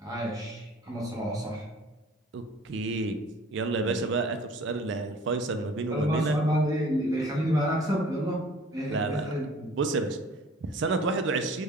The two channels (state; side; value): normal; both; correlation 0.49